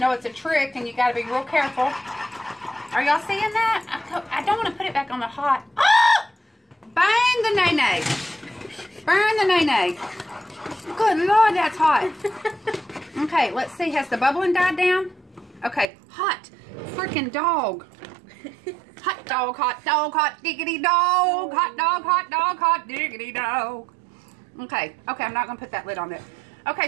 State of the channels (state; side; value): drops out; left; at 15.9 s